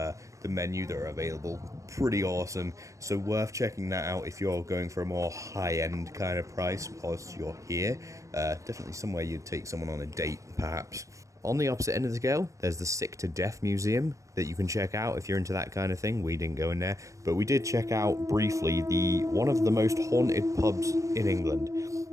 menu that are available, pretty awesome. So worth checking that out if you're going for a more high-end kind of price whilst you're here. Definitely somewhere you'd take someone on a date, perhaps. On the opposite end of the scale, there's the Sick to Death Museum that you can check out if you're into that kind of thing. We didn't go in there, but we did check out briefly one of the most haunted pubs in England.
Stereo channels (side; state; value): left; late; 0.15 ms